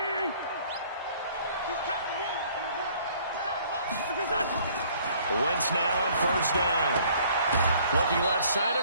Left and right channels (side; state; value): both; inverted; correlation -0.57